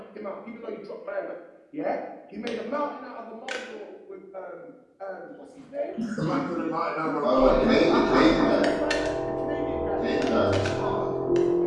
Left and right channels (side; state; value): both; identical; correlation 1.00